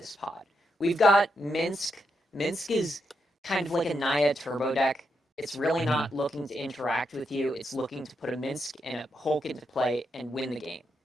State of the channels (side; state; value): both; normal; correlation 0.82